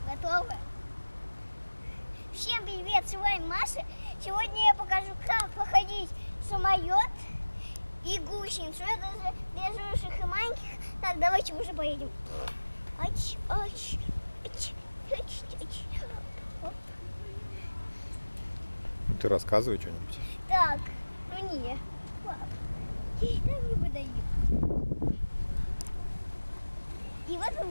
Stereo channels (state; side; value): inverted; both; correlation -1.00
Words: готовы. Всем привет, с вами Маша. Сегодня я покажу, как походить самолет и гусеницу. Это же для взрослых и маленьких. Так, давайте уже поедем. Ты рассказывай что-нибудь. Так, ну не. Пап, там не выдаю. И вот